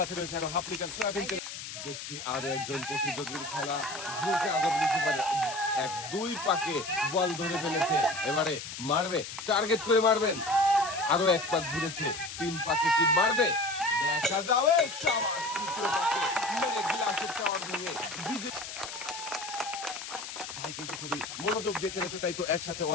রয়েছে আরো হাফ লিটার সয়াবিন তেল। দেখছি আরো একজন প্রতিযোগীর খেলা ঘুরছে আজব রিসিভারে 1-2 পাকে বল ধরে ফেলেছে। এবারে মারবে, টার্গেট করে মারবেন। আরো 1 পাক ঘুরেছে, 3 পাকে কি মারবে দেখা যাবে। শাবাশ, তৃতীয় পাকে মেরে গ্লাসের টাওয়ার ভেঙে বিজয়। ভাই কিন্তু খুবই মনোযোগ দিয়ে খেলেছে, তাই তো একসাথে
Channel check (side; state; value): left; noise; hiss, 9 dB below the sound